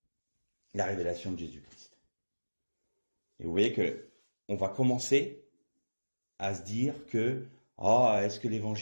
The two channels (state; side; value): inverted; both; correlation -1.00